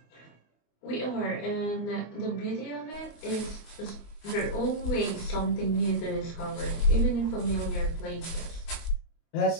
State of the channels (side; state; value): right; late; 25 ms